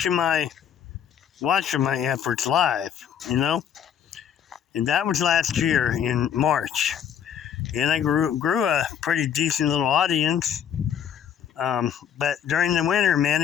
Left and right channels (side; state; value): right; quieter; 8.7 dB